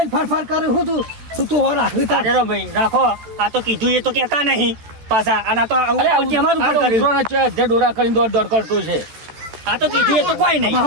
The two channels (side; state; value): left; late; 14 ms